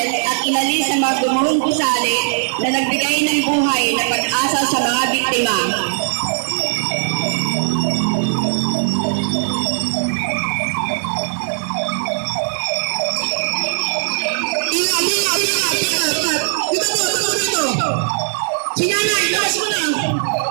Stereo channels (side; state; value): left; silent; digital silence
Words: at inalis ang mga gumuhong gusali na nagbigay ng buhay na pag-asa sa mga biktima. Sinanay, labas mo na!